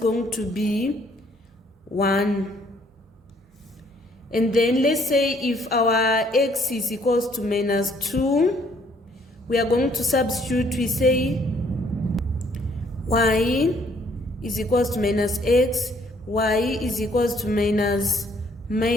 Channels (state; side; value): normal; both; correlation 0.64